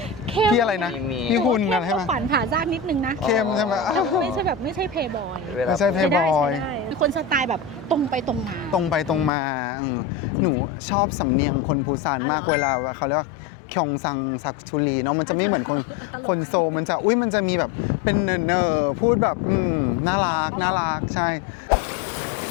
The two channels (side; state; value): right; drops out; at 9.3 s